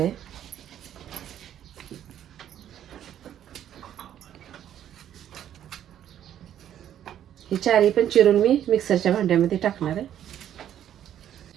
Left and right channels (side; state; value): left; quieter; 10.6 dB